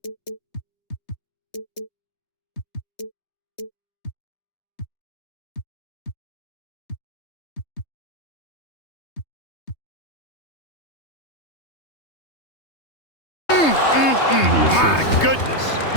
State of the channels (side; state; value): right; late; 3.2 ms